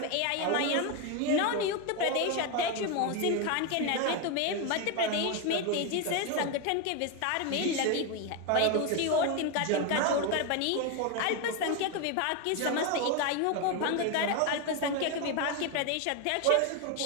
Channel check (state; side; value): different; both; correlation 0.02